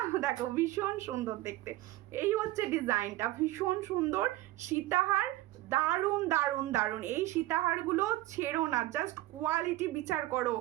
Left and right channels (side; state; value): left; quieter; 17.0 dB